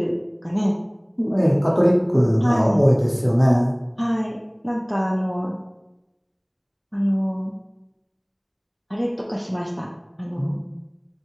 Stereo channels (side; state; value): both; identical; correlation 1.00